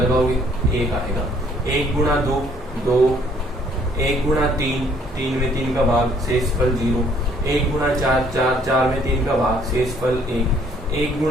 1 आएगा। 1 गुणा 2 2, 1 गुणा 3 3 में 3 का भाग शेष फल 0, 1 गुणा 4 4 4 में 3 का भाग शेष फल 1, 1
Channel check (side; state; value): both; normal; correlation 0.62